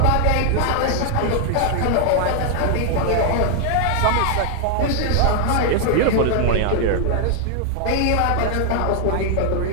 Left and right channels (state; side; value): different; both; correlation 0.00